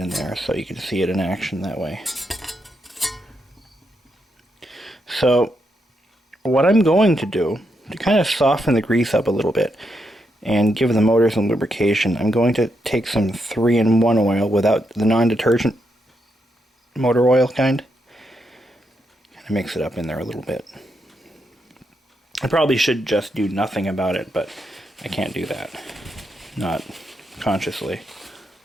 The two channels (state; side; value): normal; both; correlation 0.81